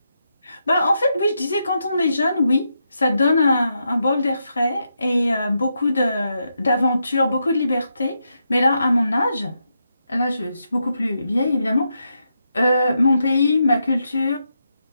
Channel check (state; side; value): inverted; both; correlation -0.83